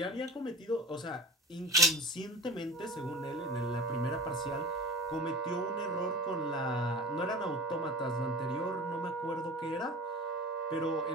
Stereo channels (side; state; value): both; normal; correlation 0.36